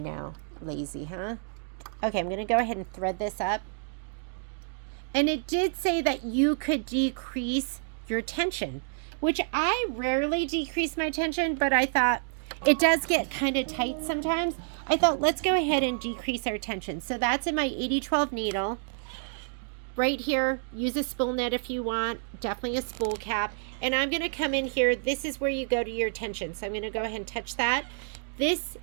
lazy, huh? Okay, I'm going to go ahead and thread this up. And it did say that you could decrease your tension, which I rarely decrease my tension, but I thought it does get kind of tight sometimes. I thought, let's go ahead and decrease our tension. So that's in my 8012 needle. Right here, use a spool net if you want, definitely a spool cap. And I'm going to come in here. This is where you go to your tension. So I'm going to go ahead and touch that. This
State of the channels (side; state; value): left; silent; digital silence